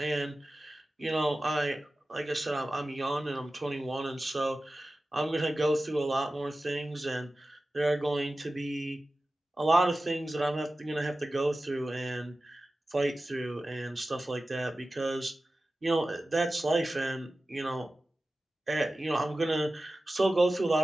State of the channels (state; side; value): normal; both; correlation 0.95